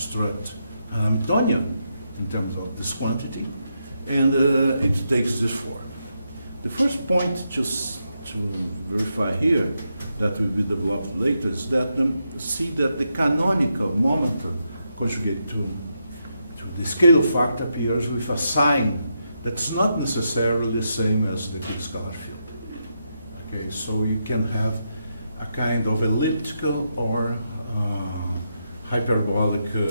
an Hamiltonian in terms of this quantity, and it takes this form. The first point just to verify here that will be developed later is that see that the canonical momentum conjugate to the scalar factor appears with a sign that's not necessarily the same as the scalar field. Okay, so you can have a kind of elliptical or hyperbolic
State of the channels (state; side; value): inverted; both; correlation -0.83